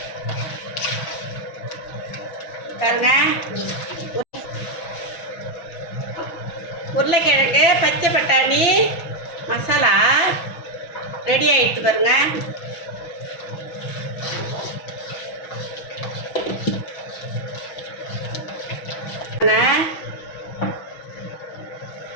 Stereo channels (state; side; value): late; right; 6.2 ms